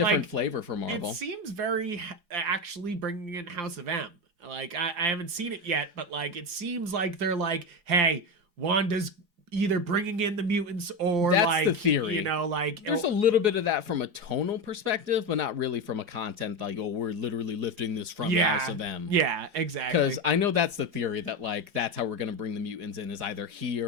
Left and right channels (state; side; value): late; left; 4.8 ms